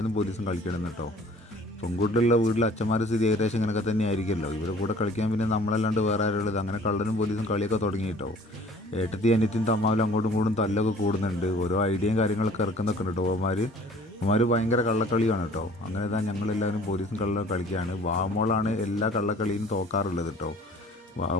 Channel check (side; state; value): both; normal; correlation 0.51